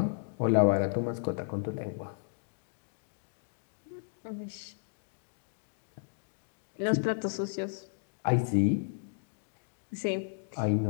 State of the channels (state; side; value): silent; right; digital silence